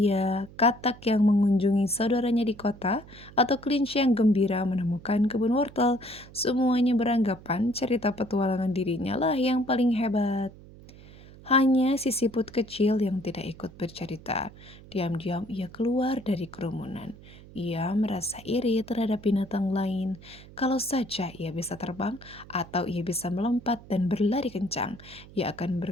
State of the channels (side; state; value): right; noise; hum, 20 dB below the sound